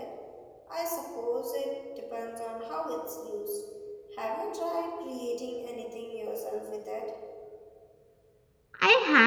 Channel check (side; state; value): both; identical; correlation 1.00